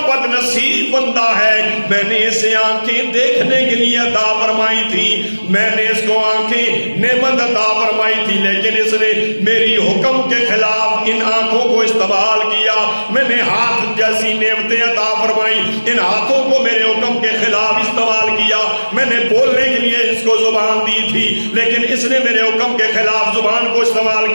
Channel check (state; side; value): inverted; both; correlation -1.00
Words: نصیب بندہ ہے, میں نے اسے آنکھیں دیکھنے کے لیے عطا فرمائی تھی, میں نے اس کو آنکھیں نعمت عطا فرمائی تھی, لیکن اس نے میری حکم کے خلاف ان آنکھوں کو استعمال کیا. میں نے ہاتھ جیسی نعمتیں عطا فرمائی, ان ہاتھوں کو میرے حکم کے خلاف استعمال کیا. میں نے بولنے کے لیے اس کو زبان دی تھی, لیکن اس نے میرے حکم کے خلاف زبان کو استعمال